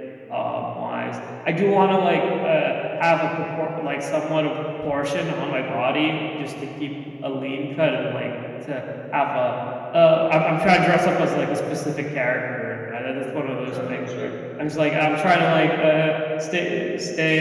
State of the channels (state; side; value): identical; both; correlation 1.00